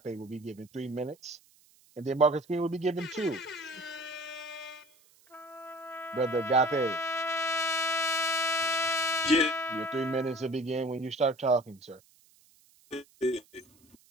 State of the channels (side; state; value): right; noise; hiss, 30 dB below the sound